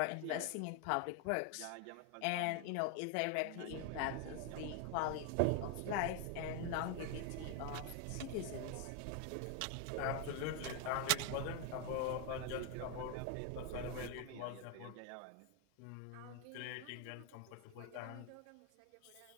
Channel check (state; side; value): different; both; correlation 0.01